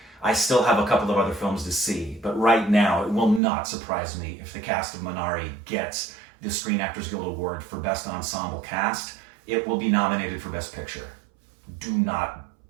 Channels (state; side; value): drops out; left; at 3.4 s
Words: I still have a couple of other films to see, but right now it will not surprise me if the cast of Minari gets the Screen Actors Guild Award for Best Ensemble Cast. It will be nominated for Best Picture.